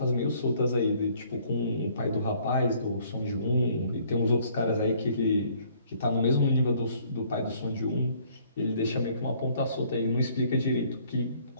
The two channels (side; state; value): both; inverted; correlation -0.61